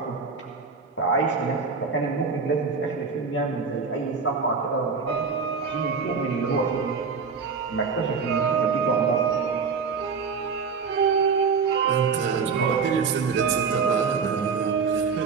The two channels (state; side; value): quieter; left; 5.4 dB